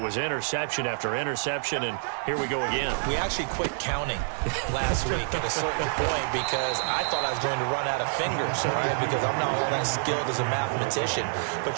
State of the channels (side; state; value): left; silent; digital silence